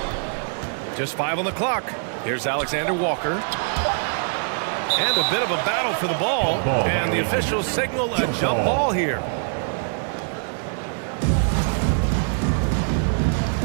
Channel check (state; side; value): silent; left; digital silence